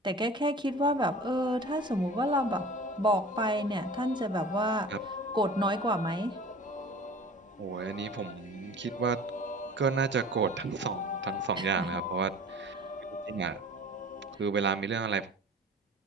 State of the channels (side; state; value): both; normal; correlation 0.42